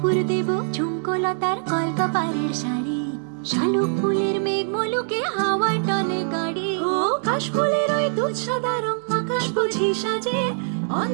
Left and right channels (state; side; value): silent; left; digital silence